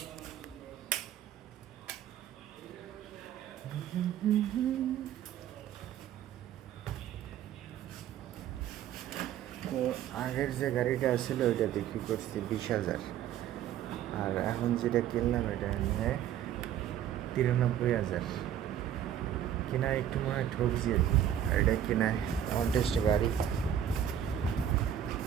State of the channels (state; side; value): quieter; left; 10.3 dB